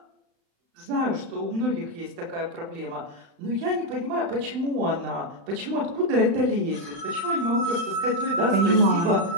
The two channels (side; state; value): left; late; 35 ms